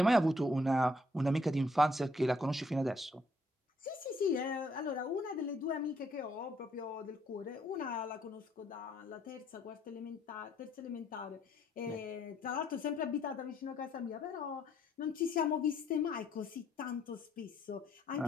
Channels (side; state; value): both; normal; correlation 0.68